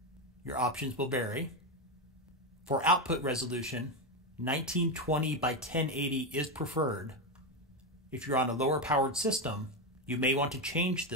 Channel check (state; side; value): normal; both; correlation 0.11